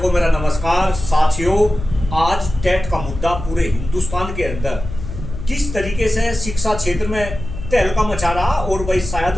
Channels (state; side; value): noise; left; hum, 9 dB below the sound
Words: को मेरा नमस्कार। साथियों, आज टेट का मुद्दा पूरे हिंदुस्तान के अंदर किस तरीके से शिक्षा क्षेत्र में तहलका मचा रहा, और भाई